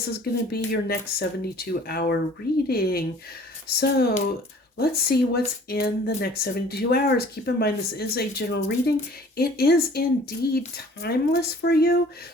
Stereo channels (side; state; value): both; normal; correlation 0.51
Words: is going to be your next 72-hour reading. So let's see what's in the next 72 hours. Keep in mind, this is a general reading. It is indeed timeless for you.